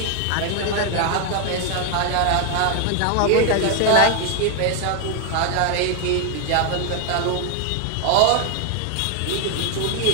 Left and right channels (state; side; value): different; both; correlation 0.01